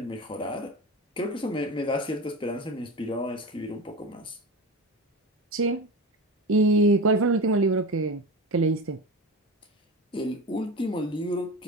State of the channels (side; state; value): both; normal; correlation 0.26